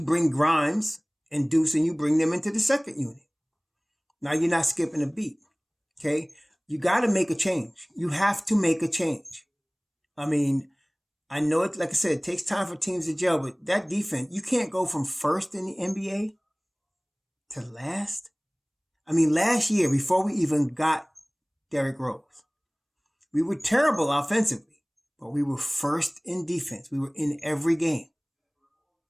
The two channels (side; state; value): both; identical; correlation 1.00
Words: Grimes and Deuce and you bring them into the second unit. Now you're not skipping a beat. Okay? You got to make a change. You have to make a change. I mean, I know it, like I said, it takes time for teams to gel, but that defense, you can't go from first in the NBA to last. I mean, last year, before we even got Derrick Rose, we were terrible offensively, but we were first in defense. We were in every game.